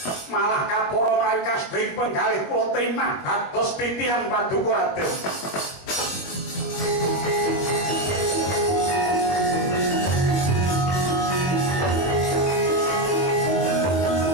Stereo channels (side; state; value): right; late; 21 ms